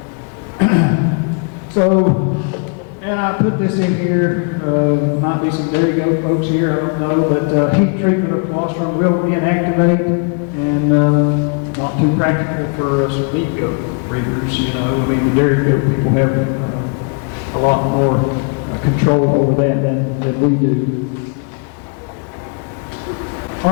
So, and I put this in here, might be some dairy goat folks here, I don't know, but heat treatment of colostrum will inactivate and not too practical for some meat goat breeders, I mean the dairy goat people have a lot more control over that than we do. All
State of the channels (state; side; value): quieter; right; 36.6 dB